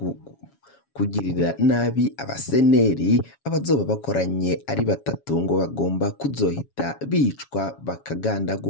kugirira nabi abaseneri. Abazoba bakoranye ari batatu ngo bagomba kuzohita bicwa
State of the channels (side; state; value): right; late; 7.2 ms